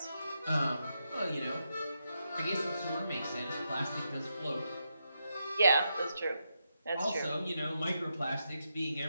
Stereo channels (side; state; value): both; inverted; correlation -0.84